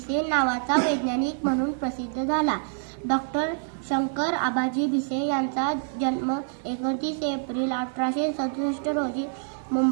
नावाचा वैज्ञानिक म्हणून प्रसिद्ध झाला. डॉक्टर शंकर आबाजी भिसे यांचा जन्म 29 एप्रिल 1867 रोजी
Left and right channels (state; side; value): silent; left; digital silence